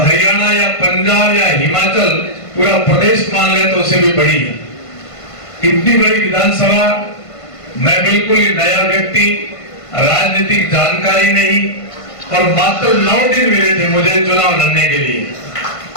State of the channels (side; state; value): right; late; 1.5 ms